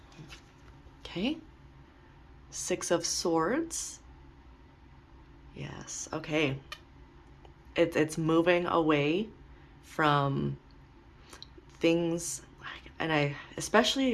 Okay. 6 of Swords. Yes. Okay. It's moving away from things, and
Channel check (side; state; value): both; identical; correlation 1.00